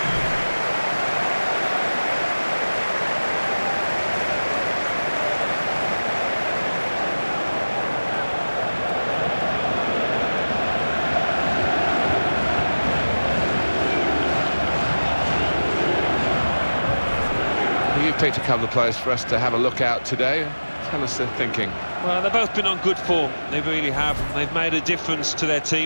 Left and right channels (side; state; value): both; inverted; correlation -1.00